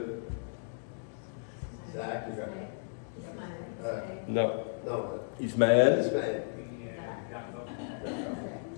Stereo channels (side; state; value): right; silent; digital silence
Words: Isaac. Non. Non. Ismaël. Ismaël.